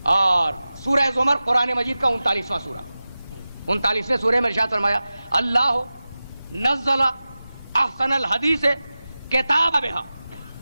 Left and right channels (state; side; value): inverted; both; correlation -0.95